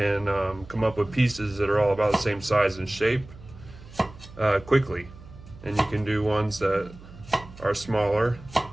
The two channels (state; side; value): noise; right; hum, 19 dB below the sound